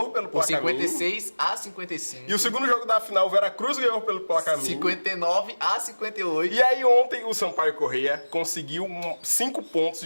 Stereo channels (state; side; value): inverted; both; correlation -1.00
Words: pelo placar mínimo. 56-55. E o segundo jogo da final, o Veracruz ganhou pelo placar mínimo. 59-58. E aí ontem o Sampaio Corrêa conseguiu 5 pontos